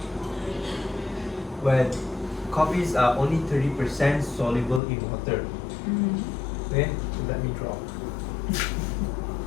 where coffees are only 30% soluble in water. Okay, so let me draw.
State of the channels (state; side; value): drops out; right; at 4.8 s